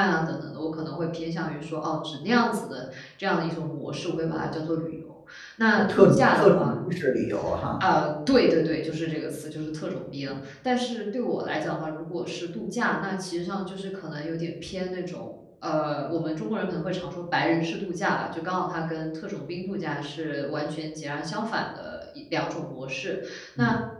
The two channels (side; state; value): both; identical; correlation 1.00